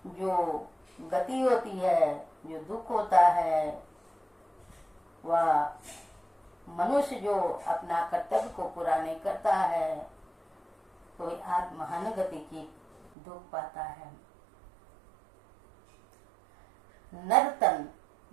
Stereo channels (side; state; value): left; drops out; at 13.1 s